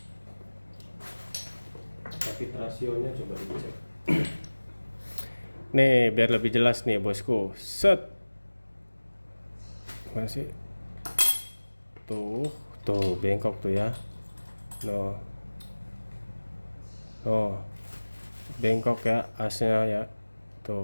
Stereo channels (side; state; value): both; inverted; correlation -1.00